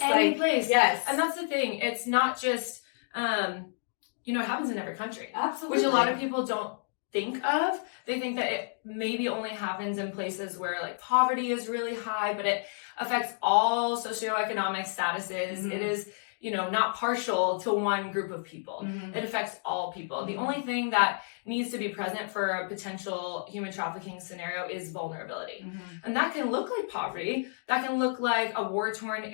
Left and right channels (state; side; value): silent; right; digital silence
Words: any place. Yes. And that's the thing. It's not just, it happens in every country. Absolutely. Which a lot of people don't think of. They think that it maybe only happens in places where like poverty is really high, but it affects all socioeconomic statuses. It is, not partial to one group of people. It affects all people. The only thing that needs to be present for a potential human trafficking scenario is vulnerability. And that can look like poverty. That can look like a war-torn